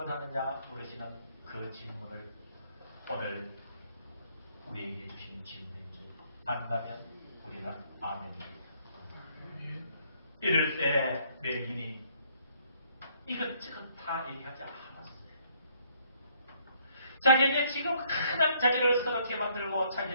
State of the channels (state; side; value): inverted; both; correlation -0.66